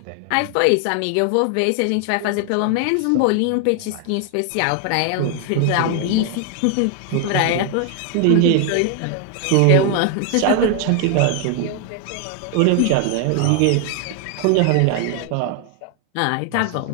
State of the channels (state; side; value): different; both; correlation 0.00